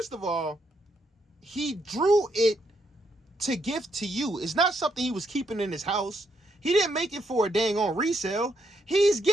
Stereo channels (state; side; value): normal; both; correlation 0.77